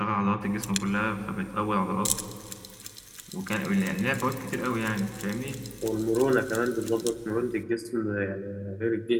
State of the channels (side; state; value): both; identical; correlation 1.00